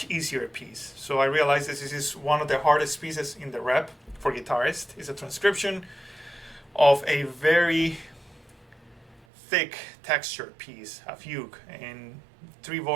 easier piece. So I realized this is one of the hardest pieces in the rep for guitarists. It's a transcription of a very thick textured piece, a fugue, in 3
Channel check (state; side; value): drops out; left; at 9.2 s